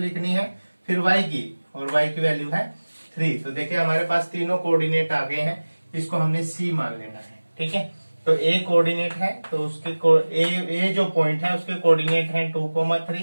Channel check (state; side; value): inverted; both; correlation -1.00